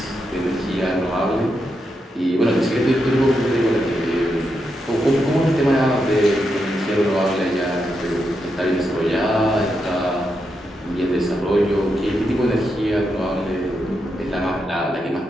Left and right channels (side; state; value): both; normal; correlation 0.84